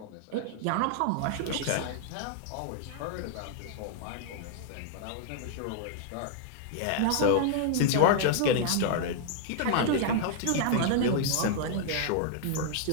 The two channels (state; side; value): different; both; correlation -0.01